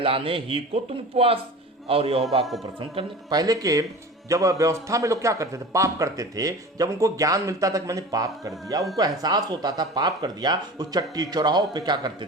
ही को तुम उपवास और यहोवा को प्रसन्न करने। पहले के जब व्यवस्था में लोग क्या करते थे? पाप करते थे। जब उनको ज्ञान मिलता था कि मैंने पाप कर दिया, उनको एहसास होता था पाप कर दिया, उस चट्टी चौराहों पे क्या करते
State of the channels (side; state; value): both; normal; correlation 0.36